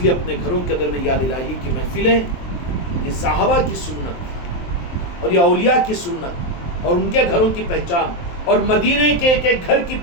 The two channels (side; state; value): right; late; 23 ms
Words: لیے اپنے گھروں کے اندر میں یاد الہی کی محفلیں، یہ صحابہ کی سنت اور یہ اولیاء کی سنت اور ان کے گھروں کی پہچان، اور مدینے کے ایک ایک گھر کی